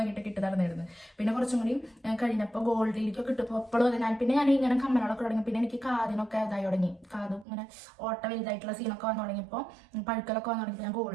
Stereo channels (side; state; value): left; drops out; at 7.5 s